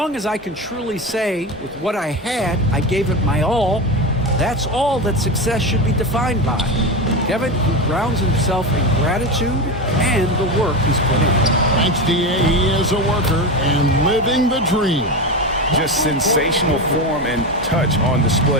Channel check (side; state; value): both; normal; correlation 0.20